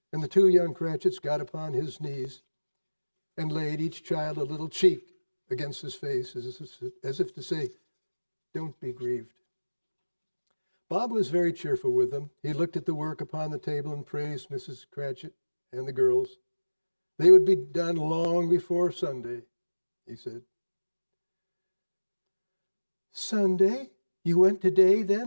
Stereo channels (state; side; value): inverted; both; correlation -1.00